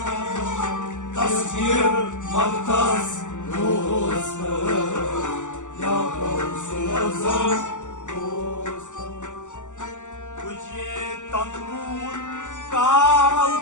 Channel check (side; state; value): right; late; 0.85 ms